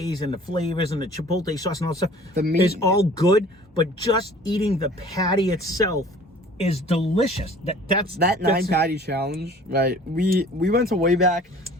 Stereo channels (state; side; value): normal; both; correlation 0.49